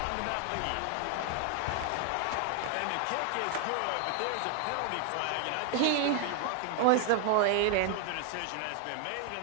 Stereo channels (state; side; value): different; both; correlation 0.00